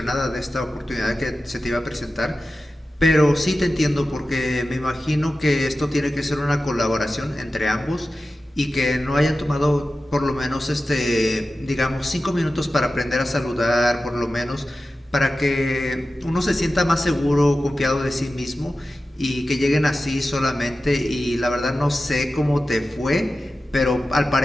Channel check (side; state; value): both; normal; correlation 0.94